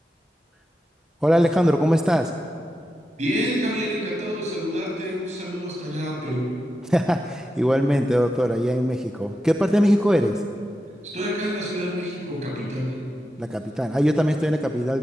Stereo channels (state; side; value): normal; both; correlation 0.89